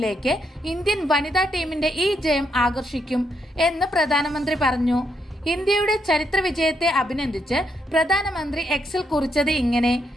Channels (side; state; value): both; normal; correlation 0.78